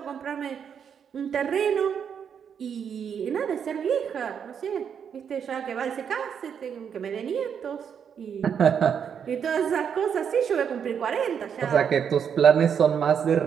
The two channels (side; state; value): left; quieter; 7.6 dB